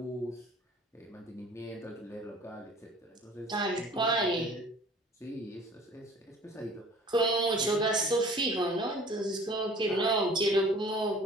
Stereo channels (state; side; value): normal; both; correlation 0.49